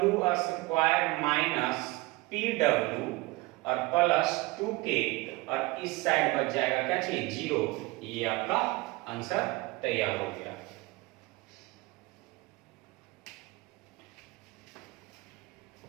माइनस PW और प्लस 2K, और इस साइड बच जाएगा क्या चाहिए 0। ये आपका आंसर तैयार हो गया।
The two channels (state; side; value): quieter; left; 22.5 dB